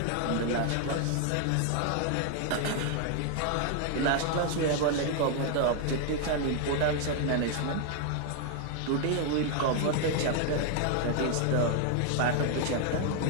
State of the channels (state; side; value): different; both; correlation 0.00